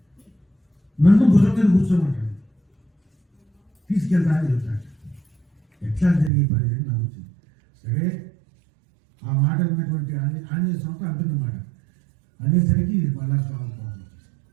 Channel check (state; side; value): drops out; left; at 6.3 s